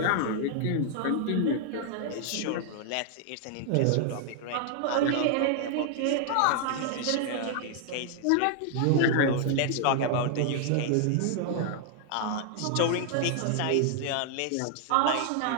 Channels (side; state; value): both; different; correlation 0.00